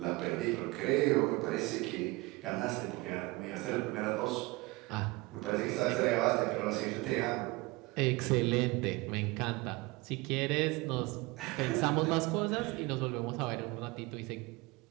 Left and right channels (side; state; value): left; quieter; 23.1 dB